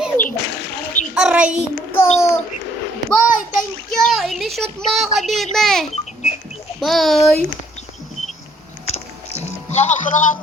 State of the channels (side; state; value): both; normal; correlation 0.63